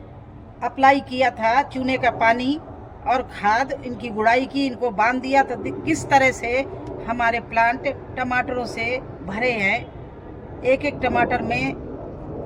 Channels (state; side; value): identical; both; correlation 1.00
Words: अप्लाई किया था चूने का पानी और खाद, इनकी गुड़ाई की, इनको बांध दिया, तो किस तरह से हमारे प्लांट टमाटरों से भरे हैं। एक एक टमाटर में,